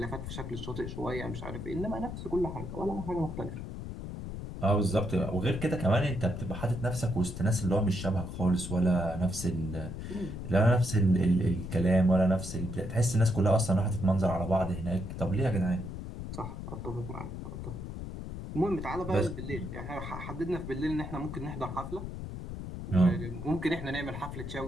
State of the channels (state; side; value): noise; left; rumble, 8 dB below the sound